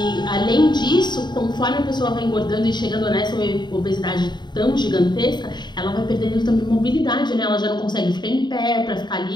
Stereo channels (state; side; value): late; right; 0.21 ms